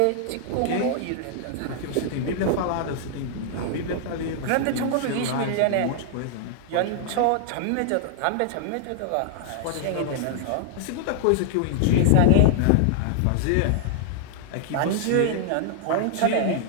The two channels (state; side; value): different; both; correlation -0.01